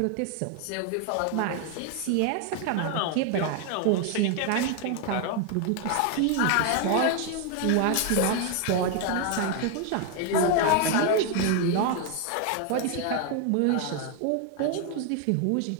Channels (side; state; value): both; different; correlation 0.01